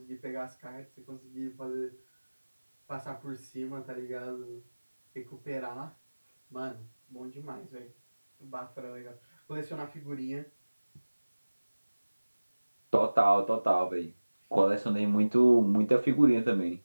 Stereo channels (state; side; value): inverted; both; correlation -1.00